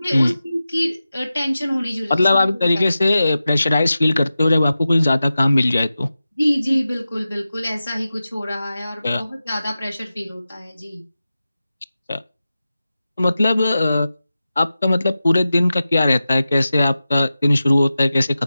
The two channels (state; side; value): inverted; both; correlation -0.94